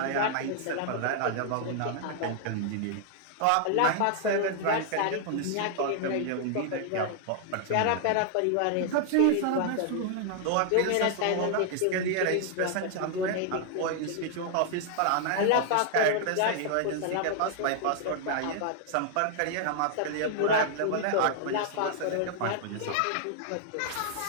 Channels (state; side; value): different; both; correlation -0.01